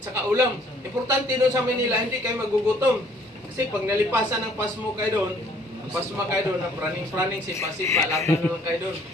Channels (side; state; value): both; normal; correlation 0.60